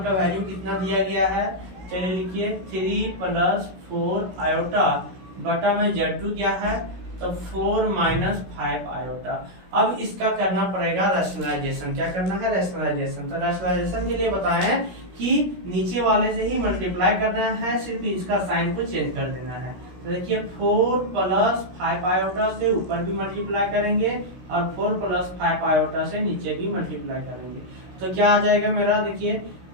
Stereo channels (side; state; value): left; late; 16 ms